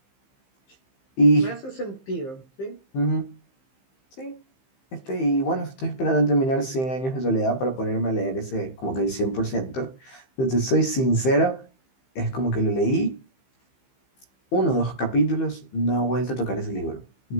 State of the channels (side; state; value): right; late; 15 ms